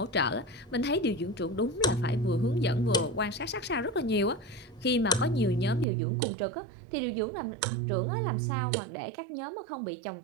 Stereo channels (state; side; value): drops out; left; at 5.9 s